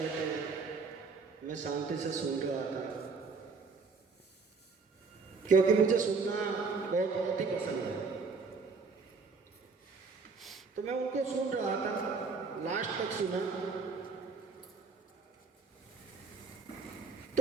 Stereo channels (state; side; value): quieter; left; 4.6 dB